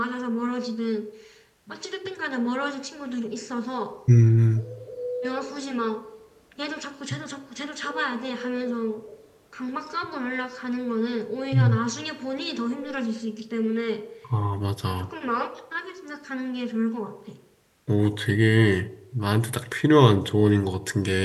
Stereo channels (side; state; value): both; identical; correlation 1.00